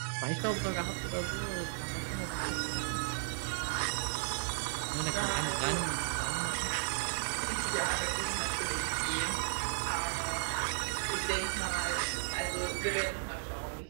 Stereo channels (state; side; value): silent; left; digital silence